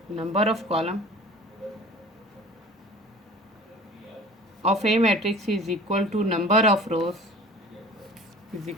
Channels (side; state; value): both; normal; correlation 0.43